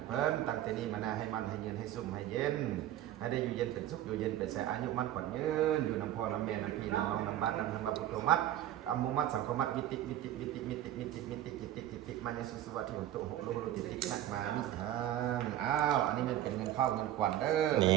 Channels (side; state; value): left; quieter; 12.6 dB